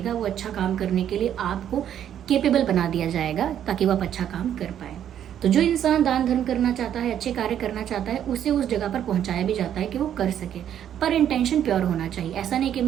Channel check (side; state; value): left; quieter; 10.1 dB